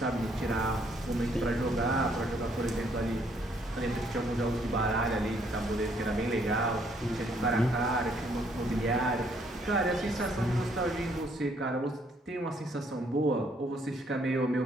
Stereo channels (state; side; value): normal; both; correlation 0.68